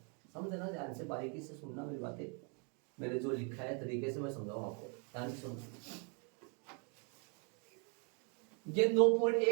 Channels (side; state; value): left; quieter; 37.7 dB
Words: समझना, ध्यान से बारीकी से सुनना मेरी बातें। मैंने जो लिखा है तरीके से मैं समझाऊं आपको, ध्यान से सुनना। ये